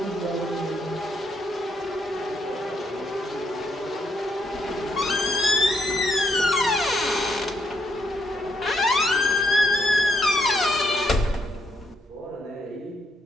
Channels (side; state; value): both; normal; correlation 0.76